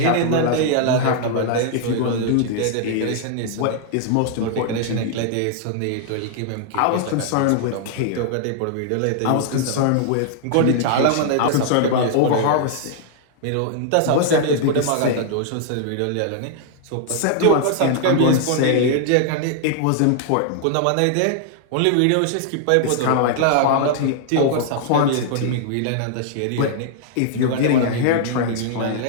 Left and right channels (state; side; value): different; both; correlation -0.01